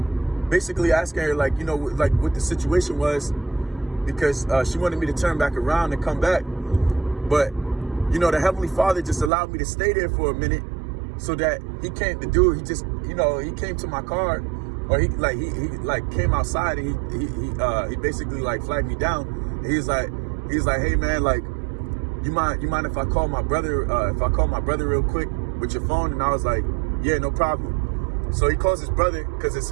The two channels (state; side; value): drops out; left; at 9.3 s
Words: basically asking her, like, you know, like what the situation was, because she wanted me to turn back around and come back. But, you know, the Heavenly Father just allowed me to stay there for a minute, so that he just, you know, he came to my car, or he came outside, and he basically like flagged me down. He's like, hey man, like, you mind if I call my brother, real quick with your phone? And I was like, yeah, no problem. So he calls his brother, because